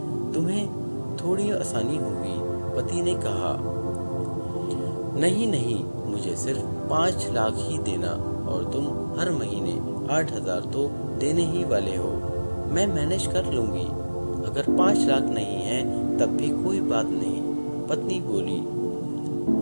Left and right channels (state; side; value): inverted; both; correlation -1.00